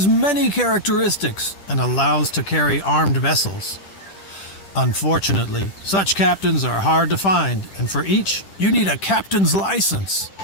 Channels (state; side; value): late; right; 10 ms